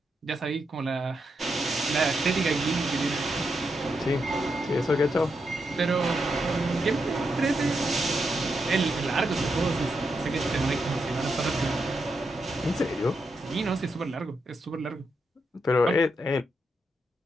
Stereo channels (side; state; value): both; normal; correlation 0.83